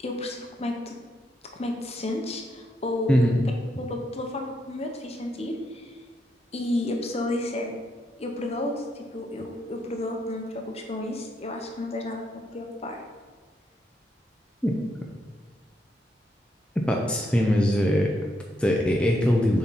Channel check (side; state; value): both; normal; correlation 0.79